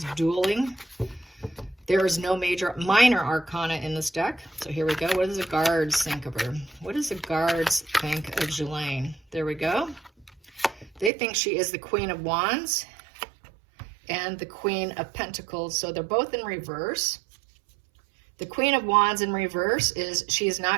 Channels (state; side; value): drops out; left; at 11.1 s